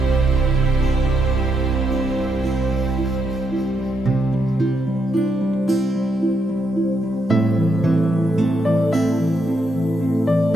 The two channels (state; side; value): normal; both; correlation 0.79